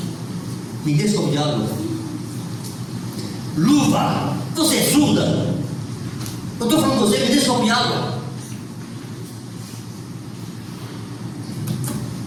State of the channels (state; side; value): identical; both; correlation 1.00